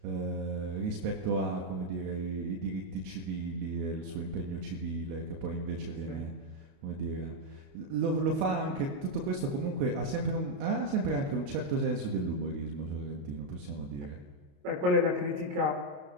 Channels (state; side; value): late; left; 28 ms